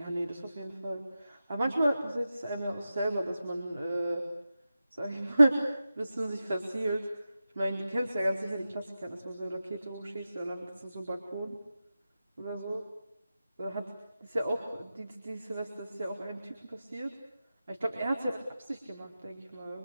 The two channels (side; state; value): both; inverted; correlation -0.93